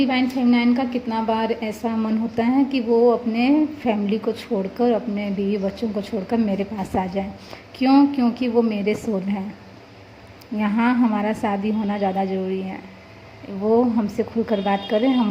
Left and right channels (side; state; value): both; identical; correlation 1.00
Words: फेमिनाइन का कितना बार ऐसा मन होता है कि वो अपने फैमिली को छोड़कर, अपने बीवी बच्चों को छोड़कर मेरे पास आ जाए। क्यों? क्योंकि वो मेरे सोल हैं, यहाँ हमारा शादी होना ज़्यादा ज़रूरी है। वो हमसे खुलकर बात करें,